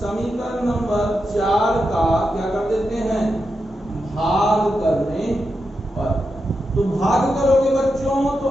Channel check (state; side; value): normal; both; correlation 0.87